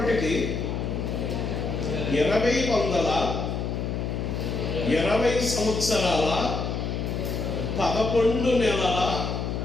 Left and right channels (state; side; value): noise; left; hum, 2 dB below the sound